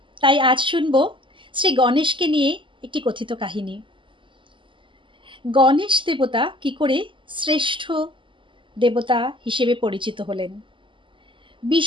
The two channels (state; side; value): late; left; 0.24 ms